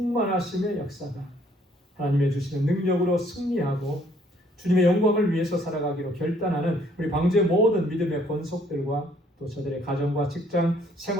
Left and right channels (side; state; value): both; normal; correlation 0.63